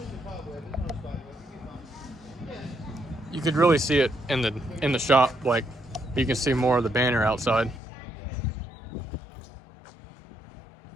You could really see it in the shop, like you can see more of the banner outside.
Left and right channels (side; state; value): right; drops out; at 7.8 s